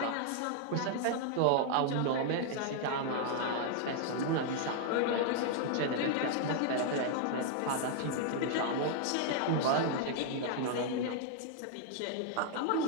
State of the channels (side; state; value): both; different; correlation -0.01